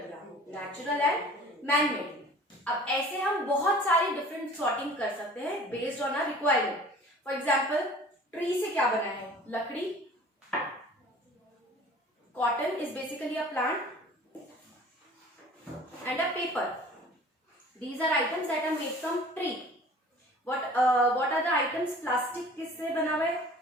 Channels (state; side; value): normal; both; correlation 0.46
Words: दिया, नेचुरल एंड मैन मेड. अब ऐसे हम बहुत सारी डिफरेंट सॉर्टिंग कर सकते हैं based on our requirement. For example, tree से क्या बना है? लकड़ी. Cotton is basically a plant and a paper. These are items that are made from tree. What are the items? Plastic किससे बना हुआ है?